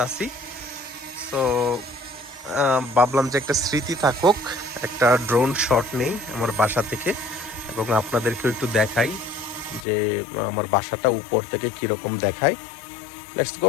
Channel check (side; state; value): right; drops out; at 9.9 s